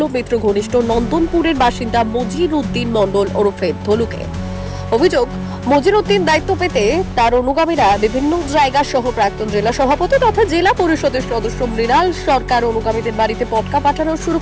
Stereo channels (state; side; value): identical; both; correlation 1.00